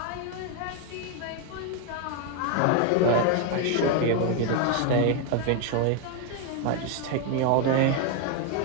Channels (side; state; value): both; different; correlation 0.01